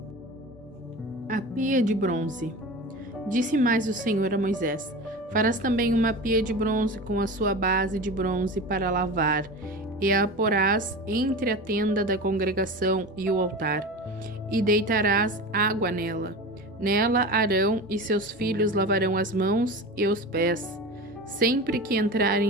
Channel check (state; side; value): normal; both; correlation 0.30